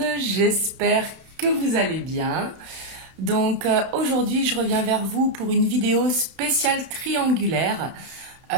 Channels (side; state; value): left; late; 31 ms